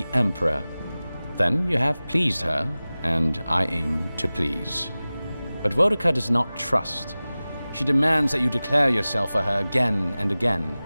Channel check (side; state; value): both; inverted; correlation -0.98